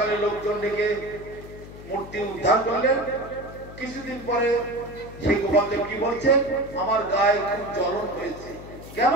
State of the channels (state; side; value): noise; left; hum, 15 dB below the sound